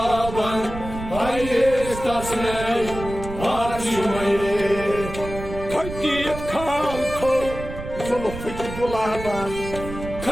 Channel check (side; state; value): right; noise; rumble, 10 dB below the sound